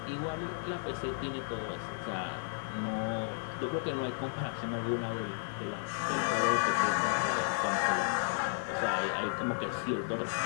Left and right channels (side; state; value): right; silent; digital silence